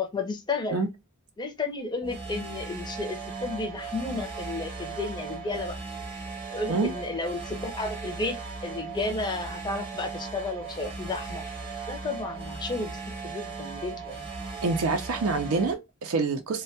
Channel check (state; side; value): normal; both; correlation 0.29